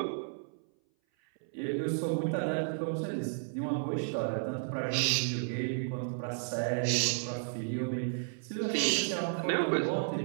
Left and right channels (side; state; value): left; silent; 56 dB below the other